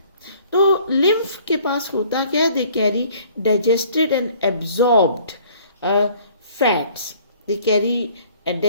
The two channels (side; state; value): both; inverted; correlation -0.56